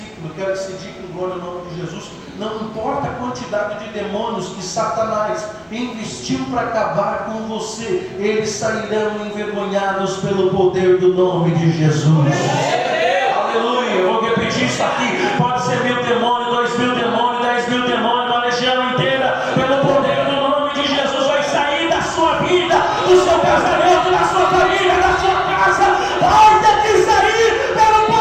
eu quero que você diga em glória ao nome de Jesus. Não importa a quantidade de demônios que Satanás investiu para acabar com você, eles sairão envergonhados pelo poder do nome de Jesus. Aleluia. Eu vou repetir isso aqui. Pode ser 1.000 demônios, 2.000 demônios, 10.000 demônios, uma legião inteira, pelo poder do nome de Jesus vai sair da sua vida, do seu casamento, da sua família, da sua casa. Vai ter que sair pelo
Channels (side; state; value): both; identical; correlation 1.00